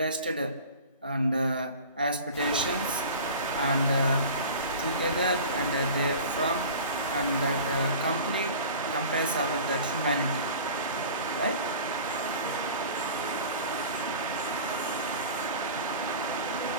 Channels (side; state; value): both; inverted; correlation -0.39